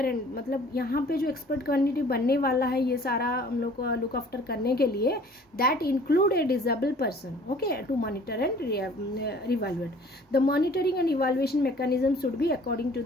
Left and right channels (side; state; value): both; normal; correlation 0.51